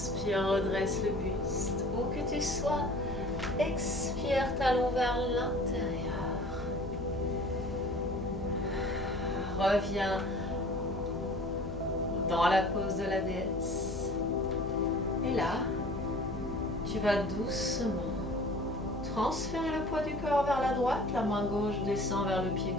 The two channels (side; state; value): left; noise; hum, 11 dB below the sound